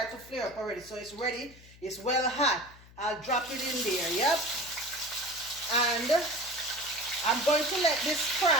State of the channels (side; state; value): left; noise; hum, 22 dB below the sound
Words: to flare up already. So it's ready. It's well hot. I'll drop it in there. Yep. And I'm going to let this